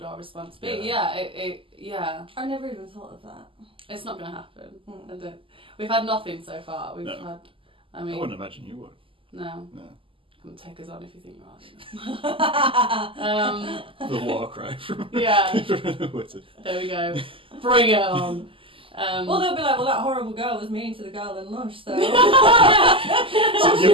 our response be? Yeah. I never even thought of that. It's not going to happen. We've had nothing so far. I wouldn't imagine you would. No. Come take us on if you think you are. The war cry from Wizard. There we go. Bring it on. Well, they'll be like, well, that horrible girl was mean to the girl in Lush, so... So you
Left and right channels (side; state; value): left; late; 0.25 ms